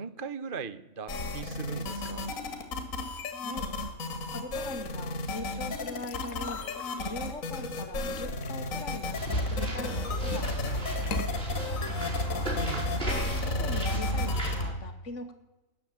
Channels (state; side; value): late; right; 3.8 ms